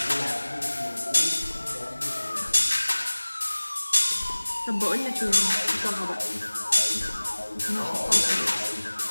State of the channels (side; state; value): both; inverted; correlation -1.00